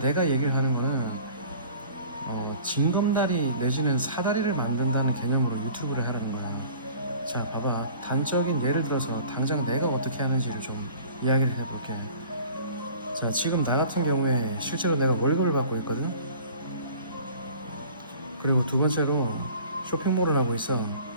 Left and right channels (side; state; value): both; inverted; correlation -0.46